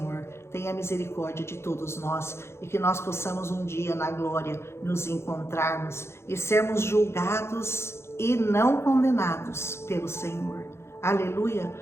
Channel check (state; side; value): late; right; 0.13 ms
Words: tenha misericórdia de todos nós e que nós possamos um dia na glória nos encontrarmos e sermos julgados e não condenados pelo Senhor. Aleluia.